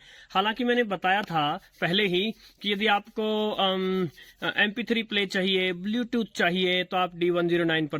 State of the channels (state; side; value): identical; both; correlation 1.00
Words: हालांकि मैंने बताया था पहले ही कि यदि आपको MP3 प्ले चाहिए, ब्लूटूथ चाहिए, तो आप D109